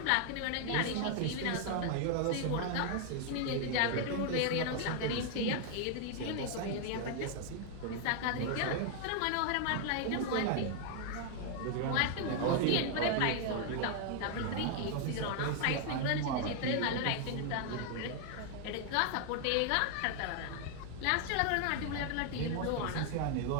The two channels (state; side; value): different; both; correlation 0.00